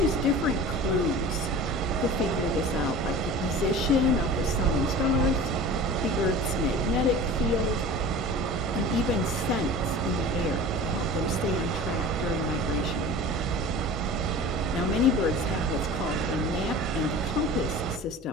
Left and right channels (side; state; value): both; normal; correlation 0.38